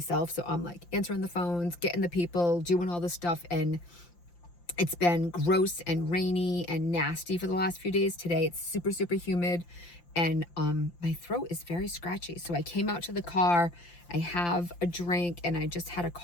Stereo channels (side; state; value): right; late; 5.8 ms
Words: So I'm like answering the phones, getting the people, doing all this stuff. And it's been gross and rainy and nasty for the last few days. Today it's super humid and my throat is very scratchy. So I came out to the car, I have a drink, and I just had a